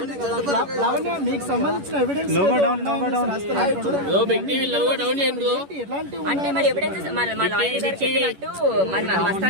అంటే మరి ఎవిడెన్స్ మా లాయర్ గారు చెప్పినట్టు మరి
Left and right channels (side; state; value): left; late; 11 ms